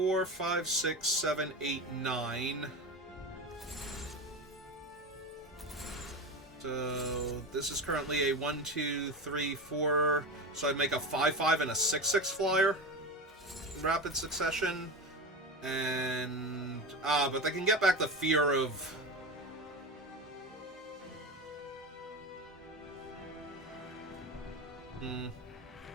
5, 6, 7, 8, 9. So this is currently a 1, 2, 3, 4. So I'd make a 5, 5 and a 6, 6 flyer in rapid succession. And but they can get back the fear of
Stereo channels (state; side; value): normal; both; correlation 0.24